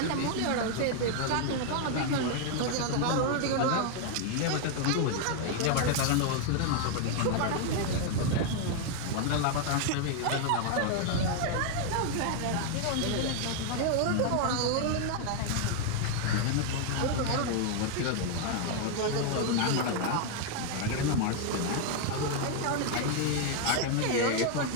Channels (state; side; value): different; both; correlation 0.00